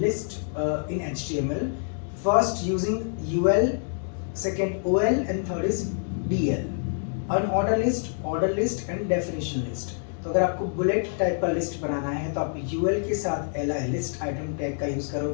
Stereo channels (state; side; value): silent; right; 60 dB below the other